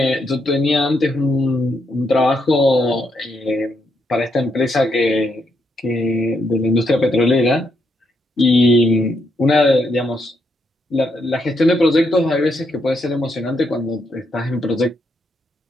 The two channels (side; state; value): both; normal; correlation 0.78